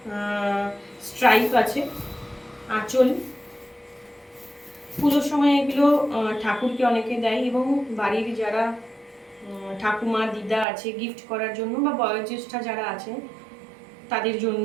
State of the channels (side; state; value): left; drops out; at 10.7 s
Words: স্ট্রাইপ আছে। আঁচল, পুজোর সময় এগুলো ঠাকুরকে অনেকে দেয় এবং বাড়ির যারা ঠাকুমা দিদা আছে গিফট করার জন্য, বা বয়োজ্যেষ্ঠা যারা আছে তাদের